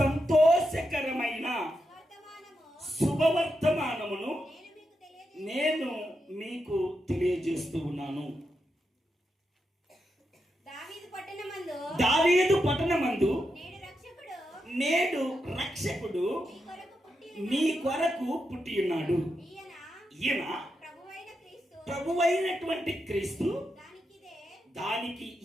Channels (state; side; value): normal; both; correlation 0.86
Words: శుభవర్తమానమును నేను మీకు తెలియజేస్తూ ఉన్నాను. దావీదు పట్టణమందు నేడు రక్షకుడు మీ కొరకు పుట్టి ఉన్నాడు. ఈయన ప్రభువైనటువంటి క్రీస్తు. దానికి